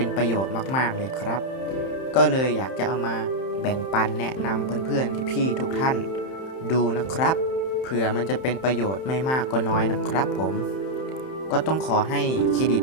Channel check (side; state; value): right; late; 31 ms